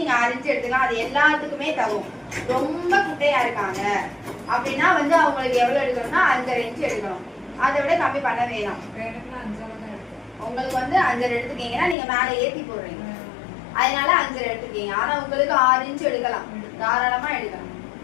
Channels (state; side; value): drops out; right; at 12.0 s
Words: 6 இன்ச் எடுத்துக்கலாம். அது எல்லாத்துக்குமே தகும். ரொம்ப குட்டையா இருக்காங்க அப்படின்னா வந்து அவங்களுக்கு எவ்வளவு எடுக்கணும்னா 5.5 இன்ச் எடுக்கணும். அதை விட கம்மி பண்ண வேணாம். உங்களுக்கு வந்து 5.5 எடுத்துக்கீங்கன்னா நீங்க மேல ஏத்தி போடுறீங்க, அதனால 5.5 எடுத்துக்கீங்க. ஆனா உங்களுக்கு 6 இன்ச் எடுக்கலாம், தாராளமா எடுக்கலாம்.